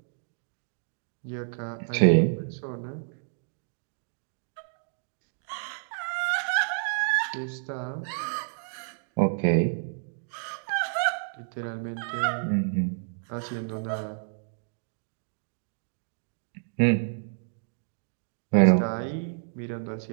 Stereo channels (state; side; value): silent; left; digital silence